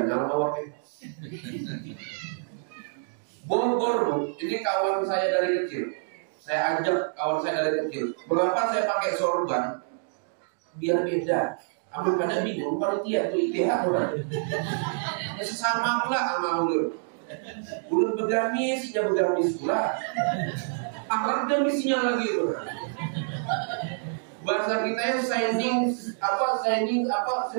mawakil. Bogor, ini kawan saya dari kecil. Saya ajak kawan saya dari kecil. Mengapa saya pakai sorban? Biar beda. Amun pada bingung, panitia itu ITH orang. Ya sesama pula sama ulur. Ulur begamis, ya begamis pula. Akhlak gamisinya lagi itu. Bahasa kita yang shining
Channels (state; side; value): silent; left; digital silence